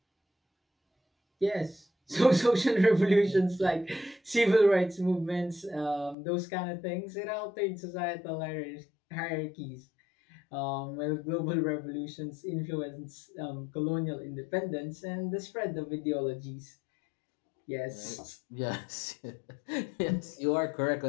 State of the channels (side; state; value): right; drops out; at 6.2 s